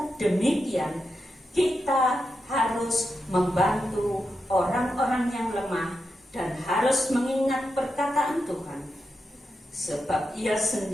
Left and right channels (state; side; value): normal; both; correlation 0.87